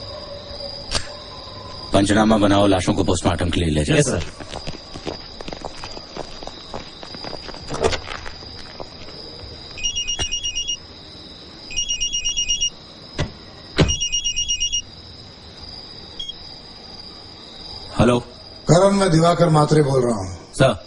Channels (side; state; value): both; identical; correlation 1.00